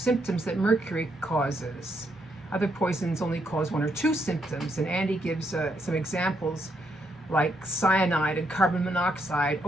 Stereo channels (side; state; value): both; normal; correlation 0.77